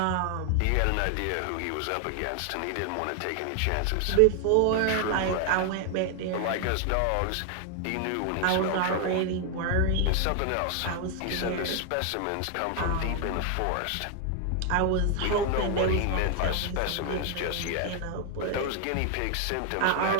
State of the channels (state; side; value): different; both; correlation 0.00